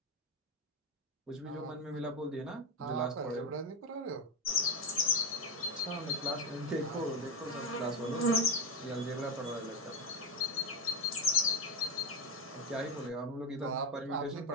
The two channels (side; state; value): both; normal; correlation 0.10